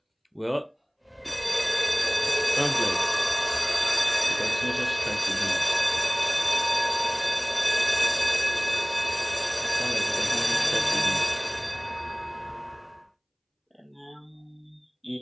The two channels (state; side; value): identical; both; correlation 1.00